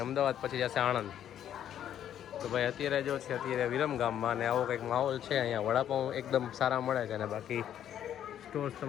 અમદાવાદ પછી જશે આણંદ. તો ભાઈ અત્યારે જો છે અત્યારે વિરમગામમાં અને આવો કંઈક માહોલ છે. અહીંયા વડાપાઉં એકદમ સારા મળે છે અને બાકી સ્ટોર્સ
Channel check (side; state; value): right; quieter; 10.3 dB